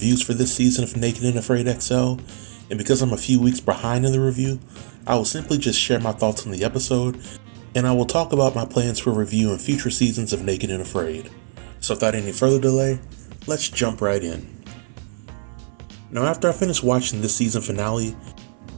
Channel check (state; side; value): silent; left; 58 dB below the other